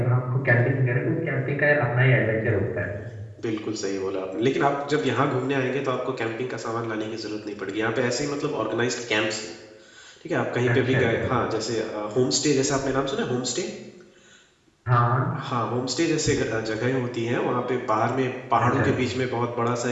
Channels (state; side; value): identical; both; correlation 1.00